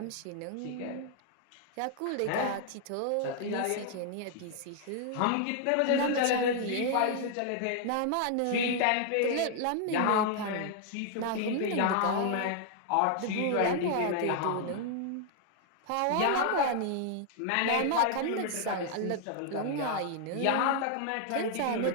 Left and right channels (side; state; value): both; different; correlation 0.00